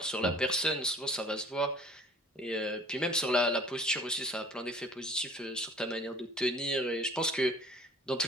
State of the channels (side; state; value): both; normal; correlation 0.50